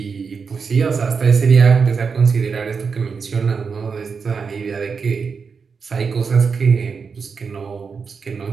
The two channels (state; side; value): quieter; left; 5.5 dB